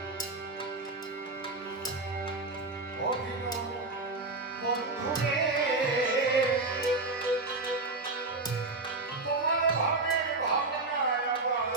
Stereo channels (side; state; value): left; quieter; 3.3 dB